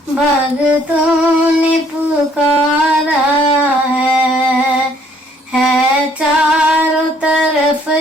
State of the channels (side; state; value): both; normal; correlation 0.63